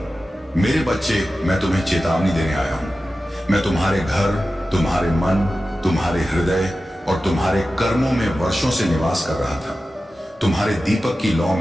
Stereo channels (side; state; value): both; normal; correlation 0.94